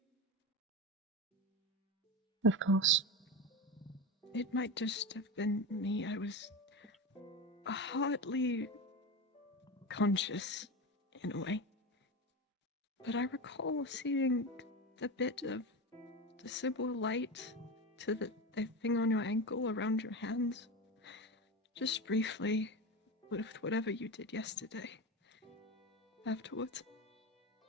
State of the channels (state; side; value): normal; both; correlation 0.21